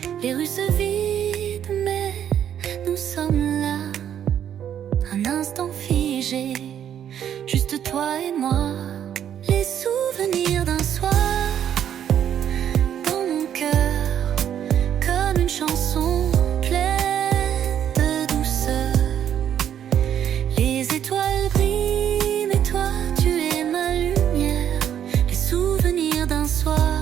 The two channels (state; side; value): quieter; left; 9.7 dB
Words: Les rues se vident, mais nous sommes là. Un instant figé, juste toi et moi. Les souvenirs d'un soir dans mon cœur, comme une chanson pleine de douceur. Les étoiles brillent, mais toi tu es ma lumière. Les souvenirs d'un